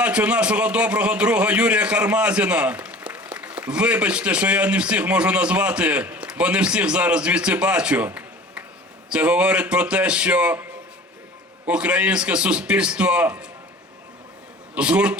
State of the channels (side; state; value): both; normal; correlation 0.43